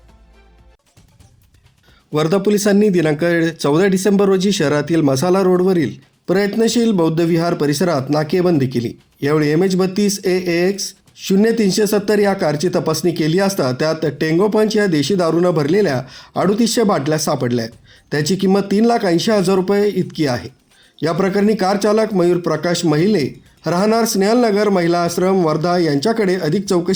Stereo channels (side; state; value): both; identical; correlation 1.00